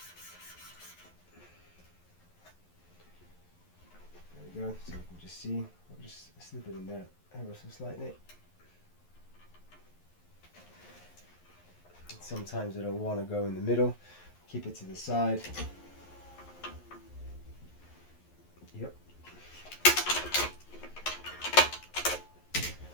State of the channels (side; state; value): right; late; 11 ms